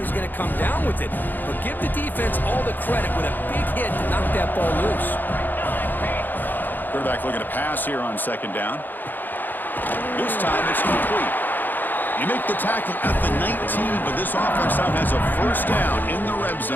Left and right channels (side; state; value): right; late; 0.089 ms